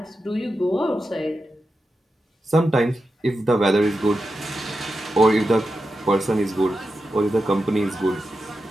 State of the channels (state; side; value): normal; both; correlation 0.89